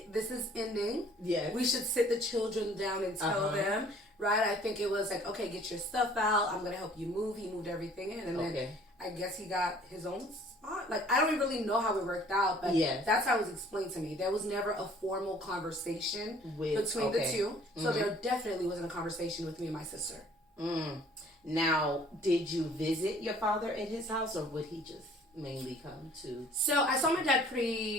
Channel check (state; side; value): normal; both; correlation 0.55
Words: this is ending. We should sit the children down and tell them. Right? I think it was like, okay, get your stuff out. I'm going to help you move. He moved everything in. And then I guess he got his own spot. like, I don't really know how it worked out, but Yes. that's how it was explained to me. There was never a formal conversation between the two. So there definitely wasn't a conversation with me and my sister. Now, did you visit your father at his house, or would he just mainly come to? So I saw my dad